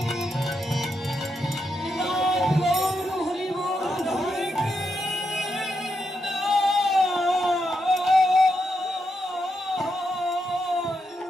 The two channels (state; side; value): normal; both; correlation 0.83